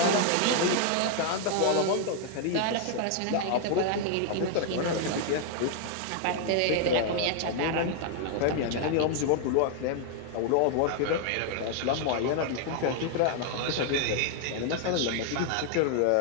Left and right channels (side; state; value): both; different; correlation 0.00